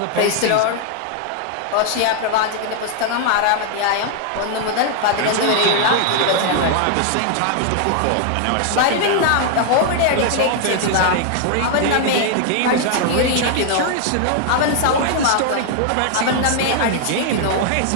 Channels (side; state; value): both; different; correlation 0.00